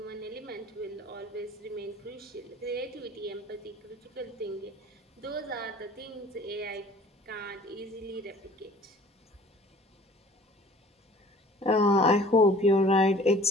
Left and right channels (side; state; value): both; normal; correlation 0.49